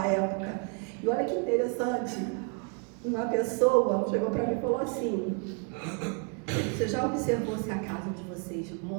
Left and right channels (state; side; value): quieter; left; 36.1 dB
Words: época. E olha que interessante, uma pessoa chegou para mim e falou assim, você já observou se a casa onde vocês